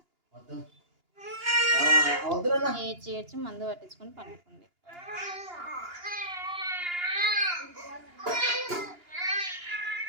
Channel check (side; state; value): left; late; 2.9 ms